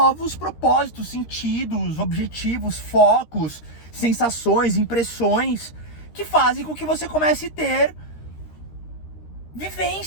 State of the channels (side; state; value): right; late; 13 ms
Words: propósitos, sentidos, objetivos, focos, sensações, impressões, que fazem com que você comece a ter